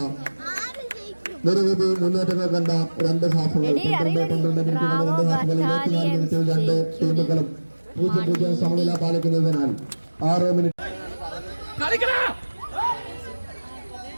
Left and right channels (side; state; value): both; inverted; correlation -1.00